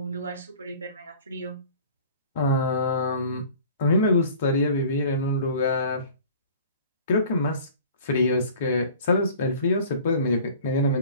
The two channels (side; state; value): both; inverted; correlation -0.46